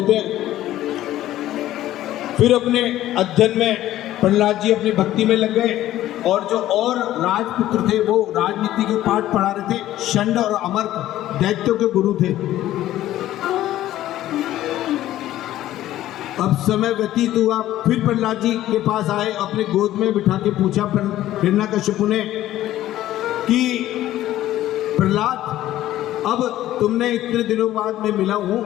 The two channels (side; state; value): right; quieter; 13.9 dB